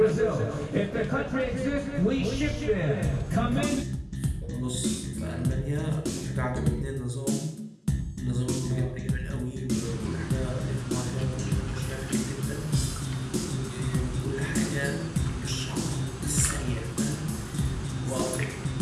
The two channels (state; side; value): identical; both; correlation 1.00